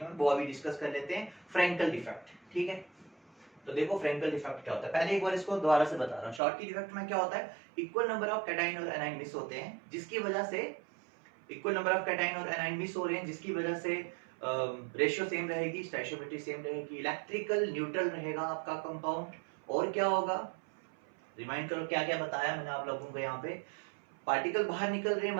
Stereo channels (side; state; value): left; drops out; at 6.4 s